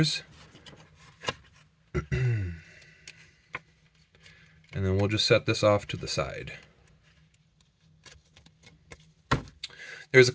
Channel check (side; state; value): both; identical; correlation 1.00